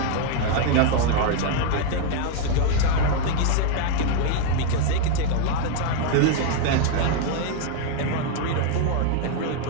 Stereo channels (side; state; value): both; different; correlation 0.01